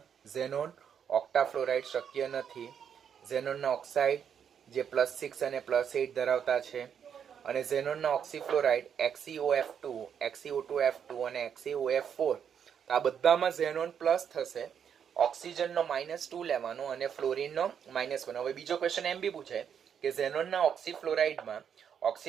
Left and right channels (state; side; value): quieter; left; 8.0 dB